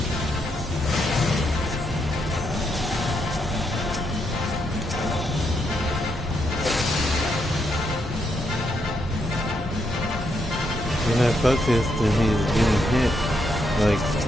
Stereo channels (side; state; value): both; normal; correlation 0.79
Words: Focused and he's getting hit. Like,